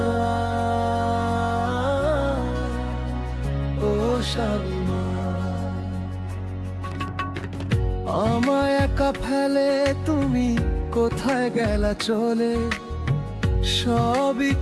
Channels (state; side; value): identical; both; correlation 1.00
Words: ও শামিমা, আমায় একা ফেলে তুমি কোথায় গেলা চলে? সবই